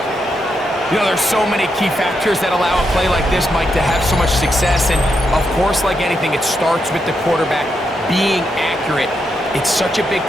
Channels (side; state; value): both; normal; correlation 0.82